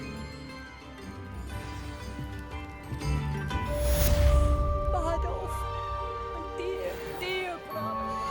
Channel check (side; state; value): both; identical; correlation 1.00